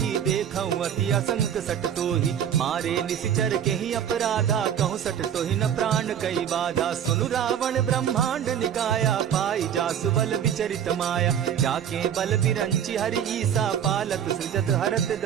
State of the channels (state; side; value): quieter; left; 9.1 dB